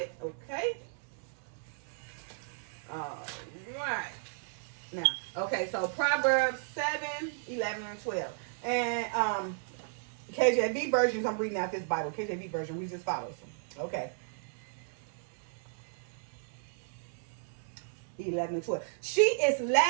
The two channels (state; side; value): silent; left; 55 dB below the other